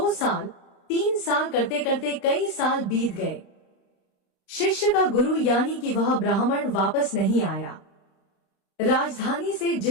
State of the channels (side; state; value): right; late; 35 ms